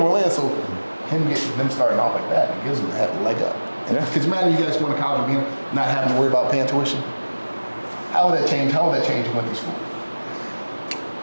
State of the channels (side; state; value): both; inverted; correlation -1.00